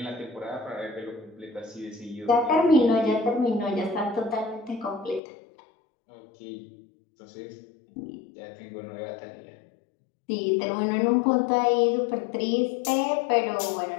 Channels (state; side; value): drops out; right; at 5.2 s